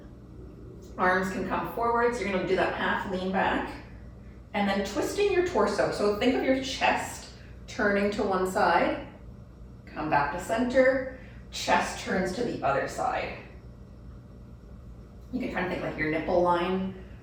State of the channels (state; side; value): identical; both; correlation 1.00